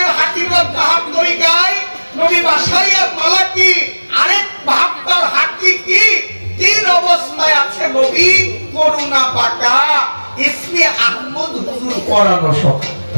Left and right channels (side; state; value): both; inverted; correlation -1.00